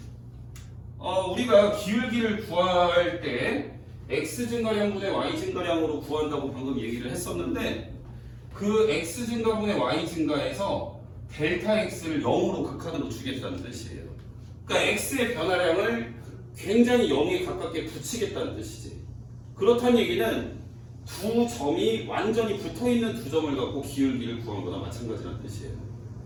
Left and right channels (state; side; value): identical; both; correlation 1.00